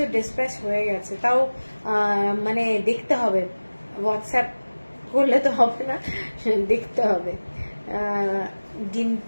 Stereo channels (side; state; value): both; inverted; correlation -1.00